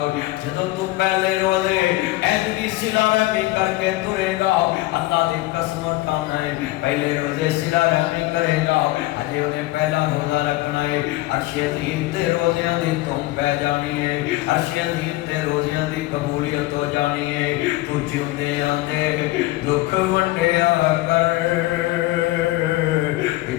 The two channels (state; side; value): quieter; right; 18.5 dB